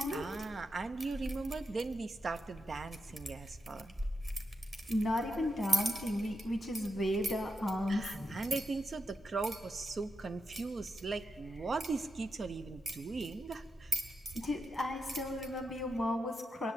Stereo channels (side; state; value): both; normal; correlation 0.84